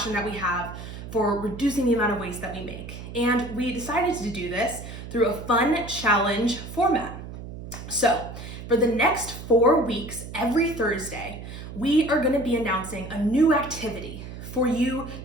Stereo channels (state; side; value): noise; right; hum, 11 dB below the sound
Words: that we have for reducing the amount of waste that we make. And we decided to do this through a fun challenge format. So, for the next 4 weeks, every Thursday, we are going to be announcing a new activity for you